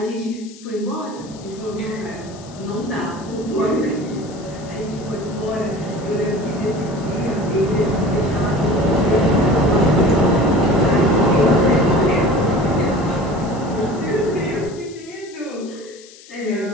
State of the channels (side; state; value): left; noise; hiss, 21 dB below the sound